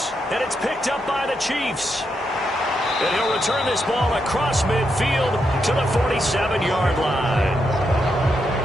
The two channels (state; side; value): normal; both; correlation 0.82